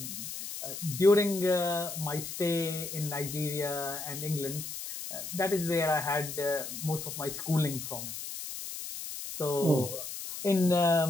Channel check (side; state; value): left; noise; hiss, 8 dB below the sound